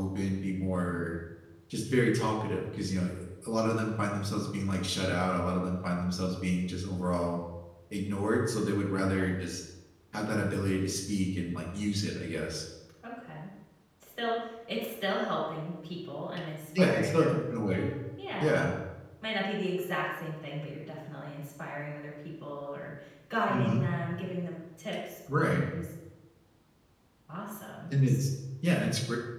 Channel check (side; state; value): both; identical; correlation 1.00